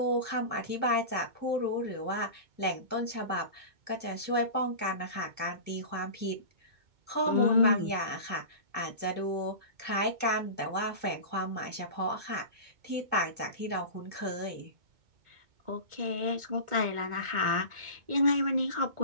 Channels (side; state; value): left; late; 2.2 ms